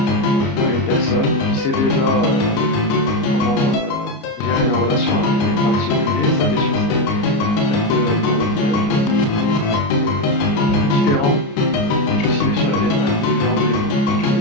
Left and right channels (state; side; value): late; right; 29 ms